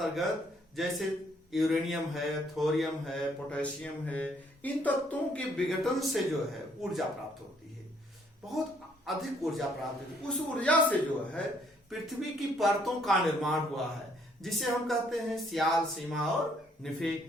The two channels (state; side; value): normal; both; correlation 0.66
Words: जैसे यूरेनियम है, थोरियम है, पोटेशियम है, इन तत्वों के विघटन से जो है ऊर्जा प्राप्त होती है, बहुत अधिक ऊर्जा प्राप्त होती है। उस ऊर्जा से जो है पृथ्वी की परतों का निर्माण हुआ है, जिसे हम कहते हैं सियाल, सीमा और